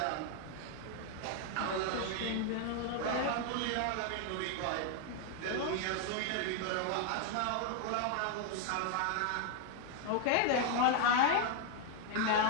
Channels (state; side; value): different; both; correlation 0.01